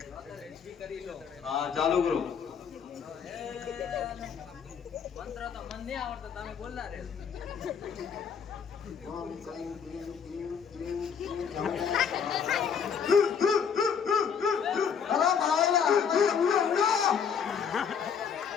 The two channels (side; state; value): right; quieter; 7.0 dB